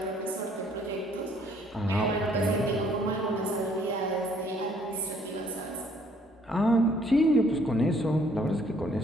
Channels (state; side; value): normal; both; correlation 0.63